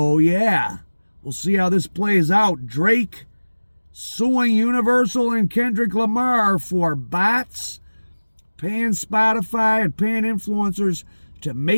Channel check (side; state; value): both; inverted; correlation -1.00